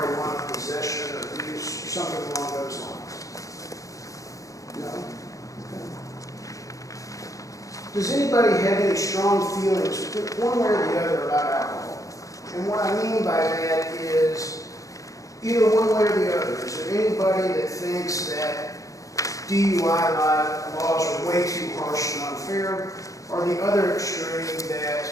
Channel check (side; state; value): right; late; 0.16 ms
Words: possession or use, or something along those lines? No? Okay. Does anybody have any strong feelings, one way or the other, about alcohol? And what I mean by that is either one way or the other. Is there anybody that thinks that DUI laws are way too harsh and unfair, or the other extreme